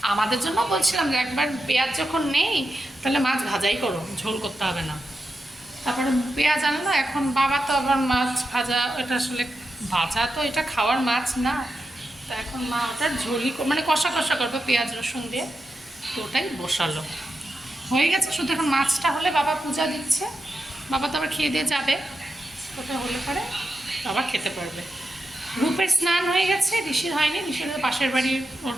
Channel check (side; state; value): both; normal; correlation 0.88